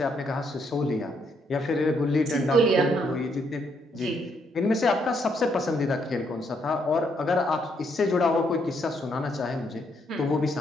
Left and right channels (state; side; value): normal; both; correlation 0.74